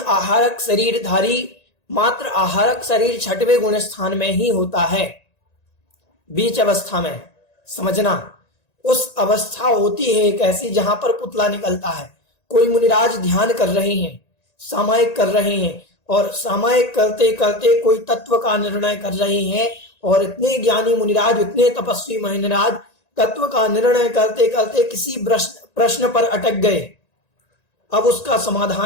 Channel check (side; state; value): right; late; 1.9 ms